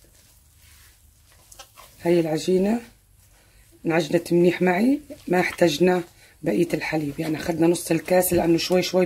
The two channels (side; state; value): both; identical; correlation 1.00